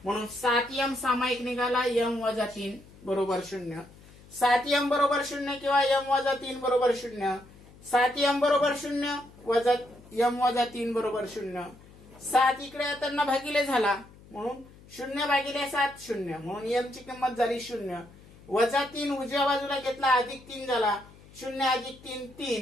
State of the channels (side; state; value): left; noise; hum, 23 dB below the sound